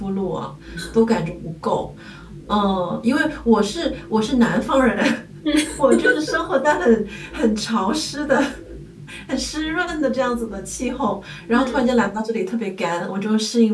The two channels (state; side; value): identical; both; correlation 1.00